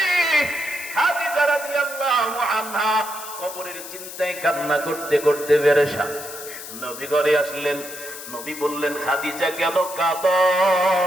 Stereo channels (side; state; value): left; noise; hiss, 11 dB below the sound